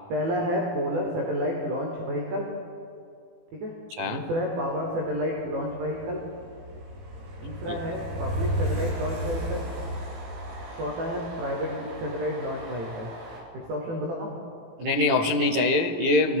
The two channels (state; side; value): late; left; 18 ms